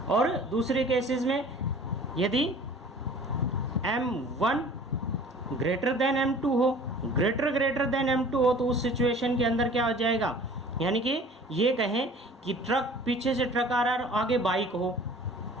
और दूसरे केसेस में यदि m1 ग्रेटर देन m2 हो, ग्रेटर देन m2 हो, तो उस सिचुएशन के अंदर क्या हो जाएगा, यानी कि ये कहें कि ट्रक, पीछे से ट्रक आ रहा है, आगे बाइक हो,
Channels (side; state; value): both; normal; correlation 0.47